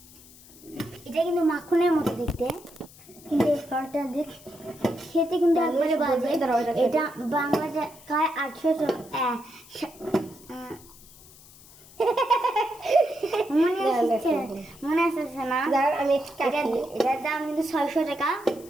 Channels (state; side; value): noise; left; hiss, 22 dB below the sound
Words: এটা কিন্তু মাখনের মতো দেখতে, কিন্তু এই ফলটা দেখ খেতে কিন্তু একবারে বাজে। এটা বাংলা টাকায় 800 মনে আসছে না? আমি এটার দাম কিন্তু 600 টাকা।